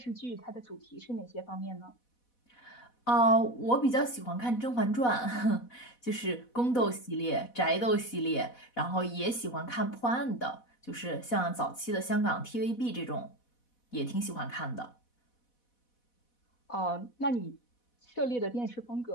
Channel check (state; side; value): late; right; 4.1 ms